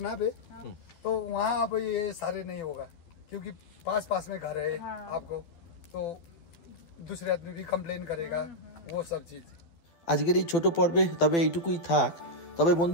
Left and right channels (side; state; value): right; late; 12 ms